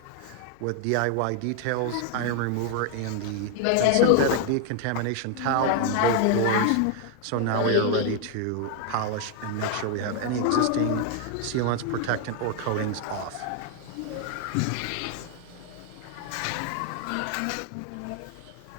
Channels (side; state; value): both; different; correlation 0.00